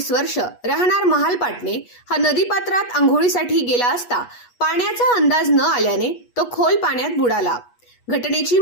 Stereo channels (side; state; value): right; late; 8.3 ms